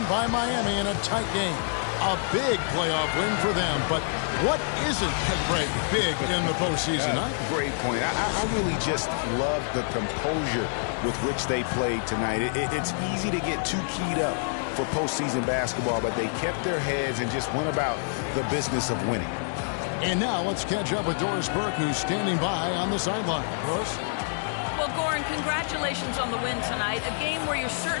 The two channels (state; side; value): silent; right; digital silence